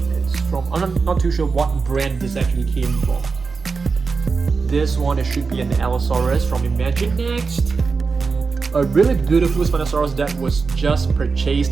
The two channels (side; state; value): left; quieter; 4.7 dB